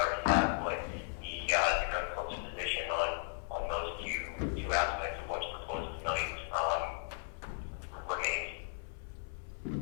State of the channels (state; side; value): silent; right; 54 dB below the other